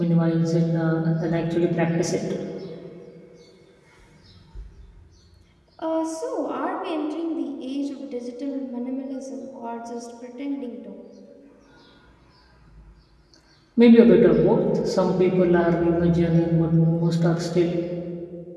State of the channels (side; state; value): both; identical; correlation 1.00